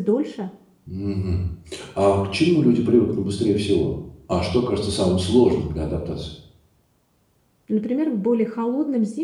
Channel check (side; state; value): both; identical; correlation 1.00